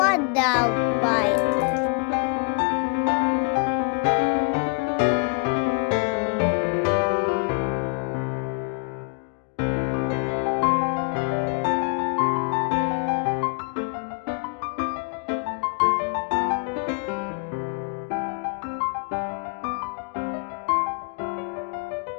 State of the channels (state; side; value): quieter; right; 36.1 dB